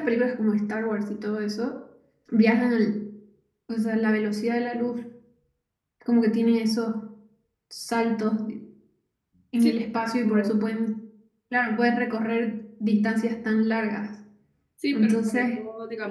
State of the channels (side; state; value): both; identical; correlation 1.00